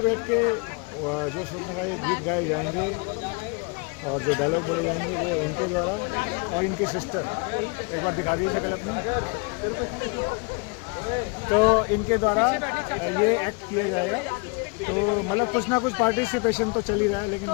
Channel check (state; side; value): quieter; right; 31.6 dB